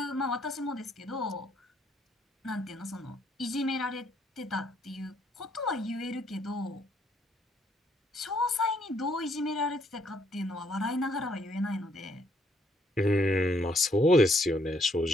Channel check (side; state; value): both; normal; correlation 0.68